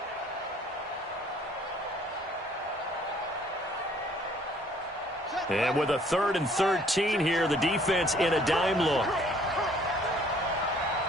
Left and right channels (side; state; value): both; normal; correlation 0.59